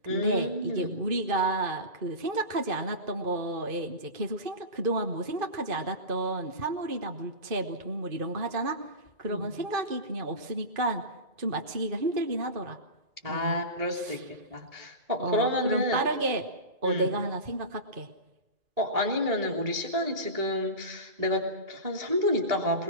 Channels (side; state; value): left; late; 2.5 ms